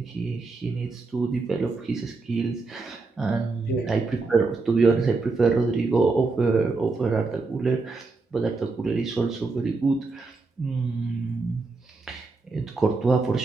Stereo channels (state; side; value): quieter; left; 3.8 dB